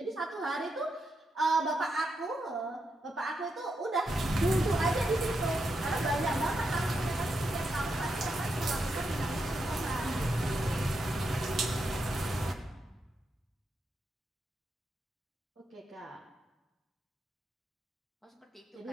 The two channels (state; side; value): normal; both; correlation 0.84